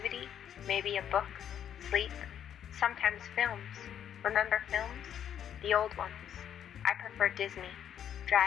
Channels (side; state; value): right; quieter; 9.5 dB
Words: maybe a book, sleep, sometimes films. Remember films? The old ones. I prefer Disney,